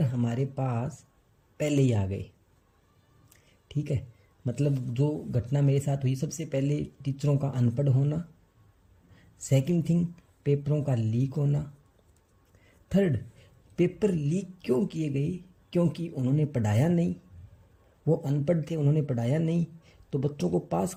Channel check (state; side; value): identical; both; correlation 1.00